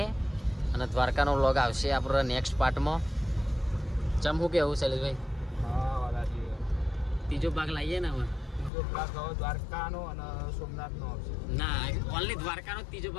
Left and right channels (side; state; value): right; drops out; at 8.7 s